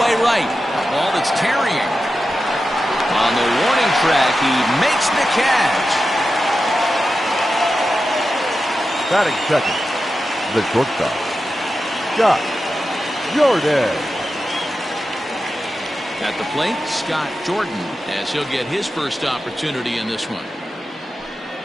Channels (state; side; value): normal; both; correlation 0.91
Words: right. A ball that's carrying. On the warning track, he makes the catch. Batting second, the shortstop, Scott Jordan. At the plate, Scott Jordan, as he'll get his first opportunity in this one.